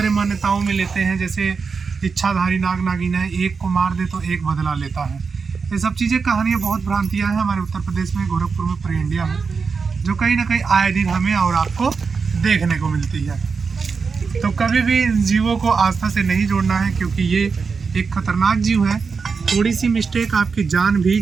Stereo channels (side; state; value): left; quieter; 5.2 dB